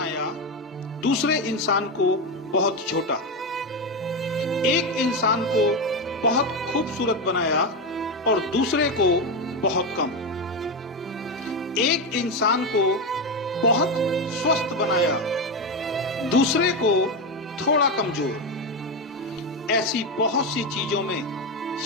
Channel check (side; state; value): both; normal; correlation 0.13